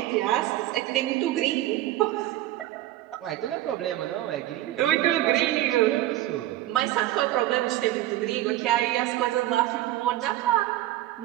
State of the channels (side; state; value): left; quieter; 15.0 dB